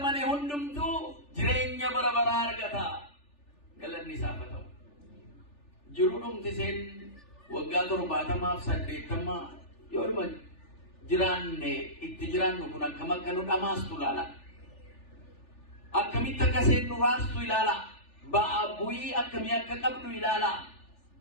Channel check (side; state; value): right; late; 3.4 ms